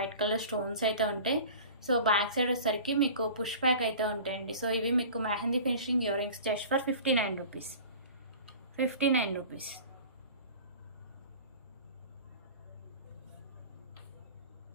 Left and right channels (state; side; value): inverted; both; correlation -0.41